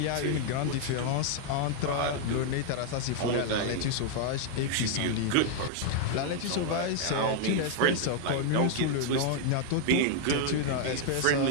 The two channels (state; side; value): different; both; correlation 0.00